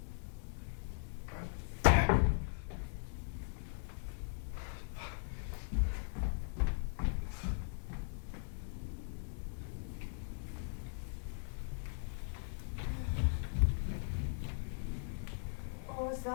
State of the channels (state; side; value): silent; right; digital silence